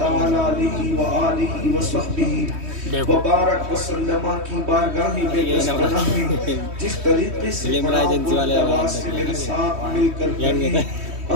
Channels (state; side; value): late; left; 3.2 ms